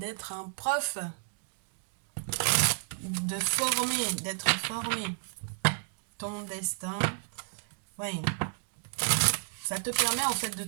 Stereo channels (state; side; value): silent; left; 57 dB below the other